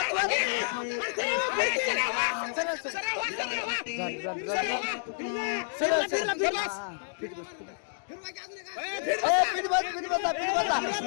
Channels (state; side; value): silent; right; digital silence